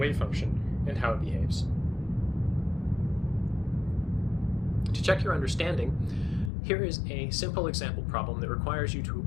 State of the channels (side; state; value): right; drops out; at 6.5 s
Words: function and how it behaves. To check your understanding, here is a simple example problem that requires you to